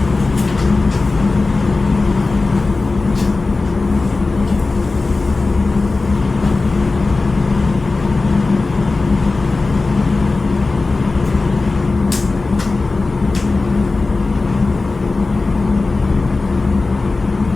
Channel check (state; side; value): quieter; right; 3.6 dB